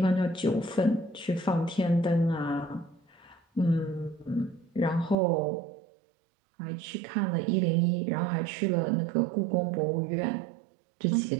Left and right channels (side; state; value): left; drops out; at 5.2 s